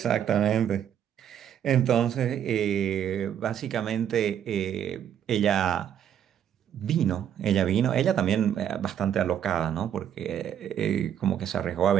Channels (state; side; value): quieter; left; 9.6 dB